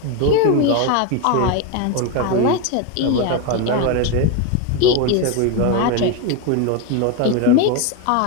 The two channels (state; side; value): different; both; correlation 0.02